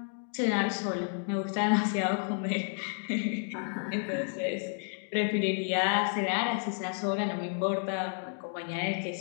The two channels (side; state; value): right; silent; 57 dB below the other